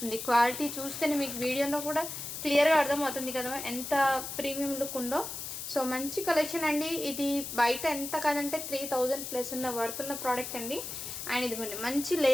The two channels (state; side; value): noise; left; hiss, 7 dB below the sound